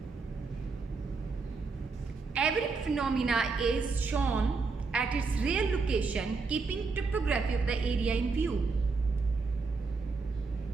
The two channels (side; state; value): left; quieter; 4.4 dB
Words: Every phenomena is shown at its real location, keeping topography of the area in view.